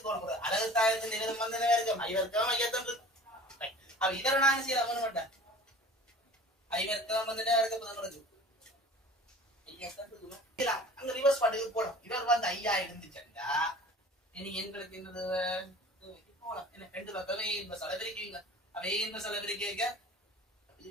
அழகுத்தாயத்தின் நிலம் வந்து இருக்கும் I வர்க்கம் ஐயத்தான் இருக்கு. அப்ப இதர நான் செய்யல பண்ண மாட்டேன். I வர்க்கம் வந்து உங்களுக்கு அங்க ரிவர்ஸ் பாட்டுக்கு போடும். இவர் வந்து ஐயா இருந்துச்சுண்டா இனி எங்களுக்கு என்னது போலாம். என்ன ரெண்டு பக்கமே இந்த செலவரிக்குவீங்க. அவே இந்த செலவரிக்க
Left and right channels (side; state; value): both; normal; correlation 0.43